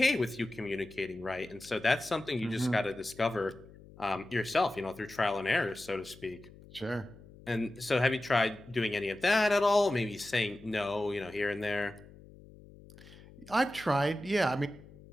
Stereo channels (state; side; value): noise; left; hum, 21 dB below the sound